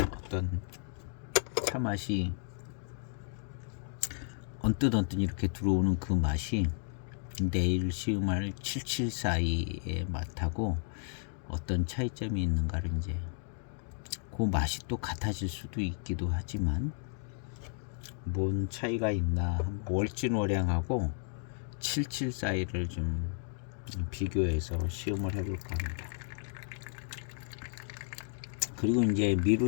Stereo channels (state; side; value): silent; right; 56 dB below the other